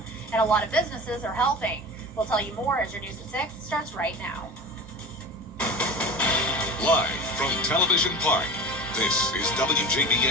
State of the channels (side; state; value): both; normal; correlation 0.34